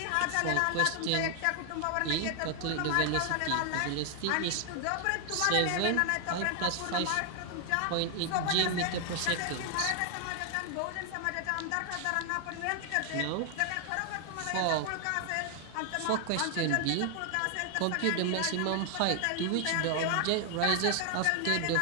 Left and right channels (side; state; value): both; different; correlation 0.00